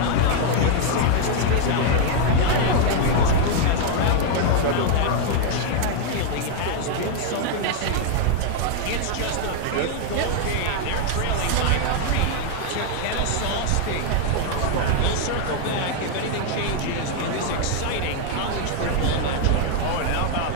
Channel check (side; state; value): both; different; correlation 0.00